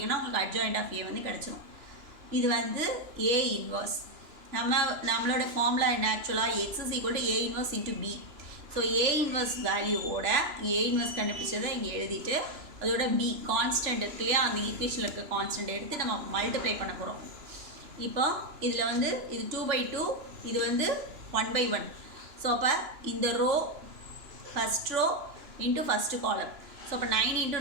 உங்களுக்கு அட்ஜாயிண்ட் ஆஃப் ஏ வந்து கிடச்சிடும். இது வந்து ஏ இன்வர்ஸ். நம்மளோட ஃபார்முலா என்ன ஆக்சுவலாக x = A inverse × B. So A inverse வேல்யூவோட ஏ இன்வர்ஸ் கண்டுபிடிச்சதை இங்கே எழுதிட்டு அதோட B கான்ஸ்டன்ட் இருக்கு இல்லையா, அந்த ஈக்குவேஷனில் இருக்க கான்ஸ்டன்ட் எடுத்து நம்ம மல்டிப்ளை பண்ண போகிறோம். இப்போ இதில் வந்து இது 2/2, இது வந்து 1/1. ஸோ அப்போ இந்த row first row into first column. So அப்போ 9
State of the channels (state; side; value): late; left; 2.9 ms